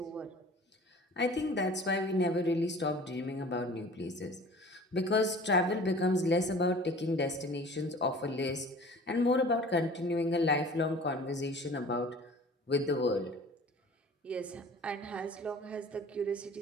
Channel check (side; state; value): both; normal; correlation 0.45